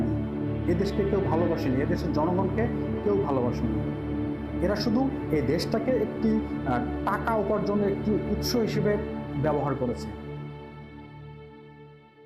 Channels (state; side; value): identical; both; correlation 1.00